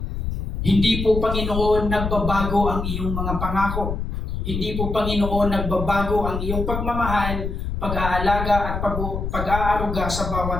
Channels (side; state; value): left; noise; rumble, 4 dB below the sound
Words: Hindi po, Panginoon, nagbabago ang iyong mga pangako. Hindi po, Panginoon, nagbabago ang iyong pagmamahal, pag-aalaga at pag-aaruga sa